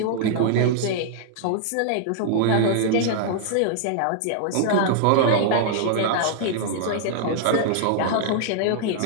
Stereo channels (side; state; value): both; different; correlation -0.01